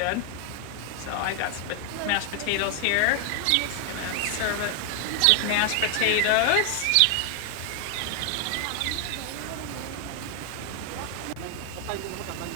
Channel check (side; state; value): both; different; correlation 0.00